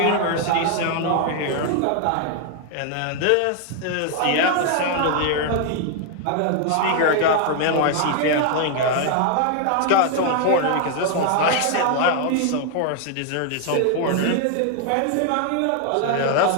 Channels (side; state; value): both; different; correlation 0.00